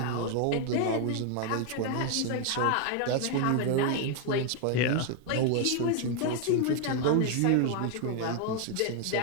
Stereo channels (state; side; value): different; both; correlation 0.00